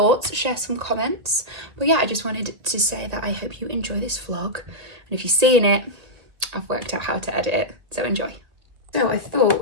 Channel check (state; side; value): late; left; 1.8 ms